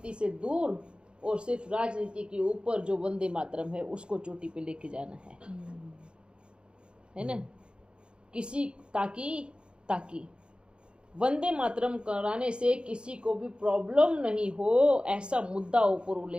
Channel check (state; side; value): late; left; 0.054 ms